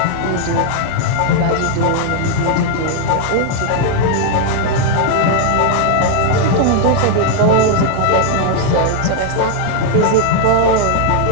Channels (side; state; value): both; different; correlation 0.00